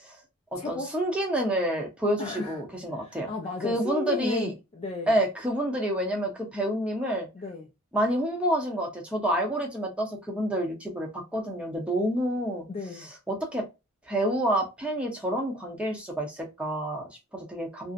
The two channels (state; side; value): normal; both; correlation 0.52